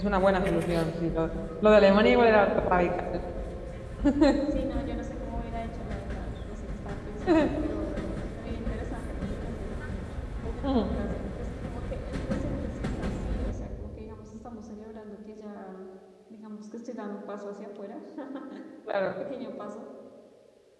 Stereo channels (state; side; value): identical; both; correlation 1.00